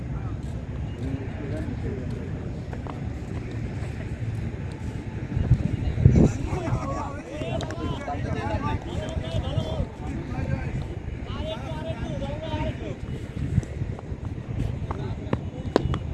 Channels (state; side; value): identical; both; correlation 1.00